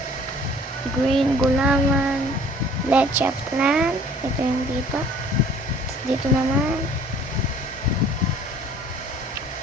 gulaman, leche plan, ito yung dito, dito naman,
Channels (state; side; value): normal; both; correlation 0.53